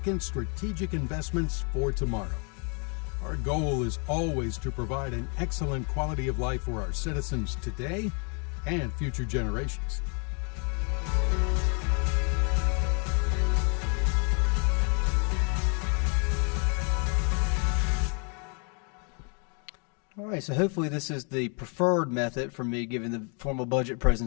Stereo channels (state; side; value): quieter; right; 37.5 dB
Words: strategic investments for tomorrow. Our goal is always to provide an excellent quality of life for our citizens today and future generations. All right, so hopefully this is the preferred method for me giving the formal budget